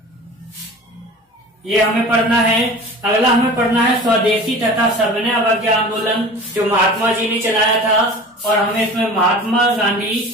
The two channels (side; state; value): both; normal; correlation 0.38